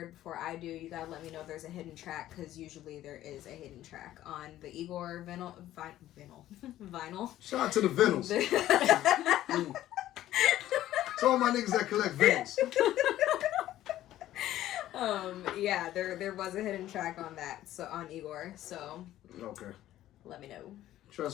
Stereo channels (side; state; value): right; quieter; 13.6 dB